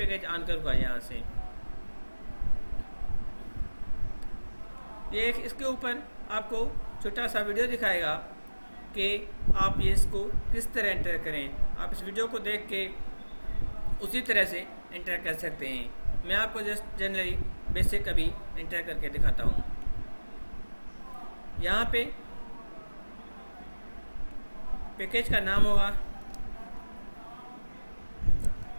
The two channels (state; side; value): inverted; both; correlation -1.00